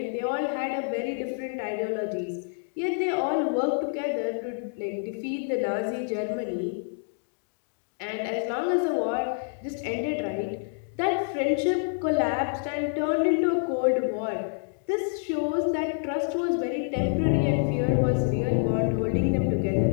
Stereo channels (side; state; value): right; silent; digital silence